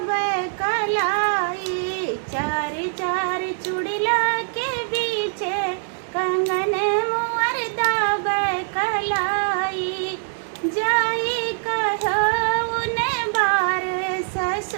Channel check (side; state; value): left; silent; digital silence